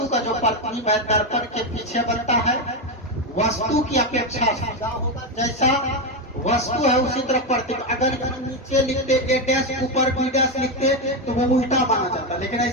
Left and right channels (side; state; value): both; normal; correlation 0.09